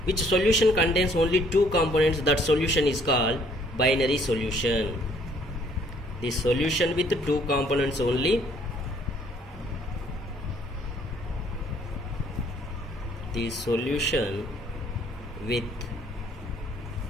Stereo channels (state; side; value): normal; both; correlation 0.62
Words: Which solution contains only 2 components? That solution is called binary solution. The solution with 2 components only. The solution with